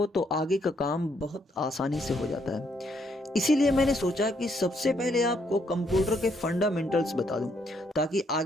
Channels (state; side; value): normal; both; correlation 0.73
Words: तो आगे का काम बहुत आसानी से हो जाता है। इसीलिए मैंने सोचा कि सबसे पहले आपको कंप्यूटर के फंडामेंटल्स बता दूं, ताकि